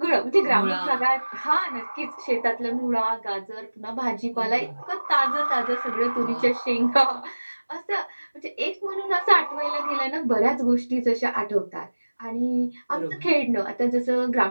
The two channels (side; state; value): both; inverted; correlation -1.00